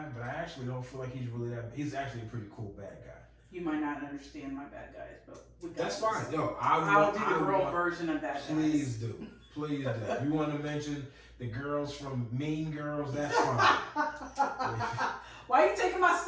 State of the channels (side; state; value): both; identical; correlation 1.00